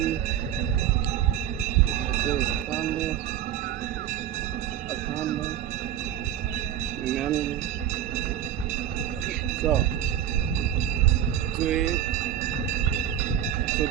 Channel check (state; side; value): quieter; left; 10.8 dB